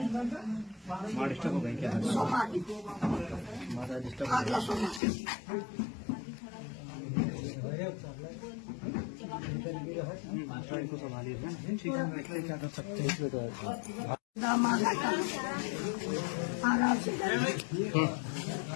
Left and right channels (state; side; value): drops out; right; at 5.0 s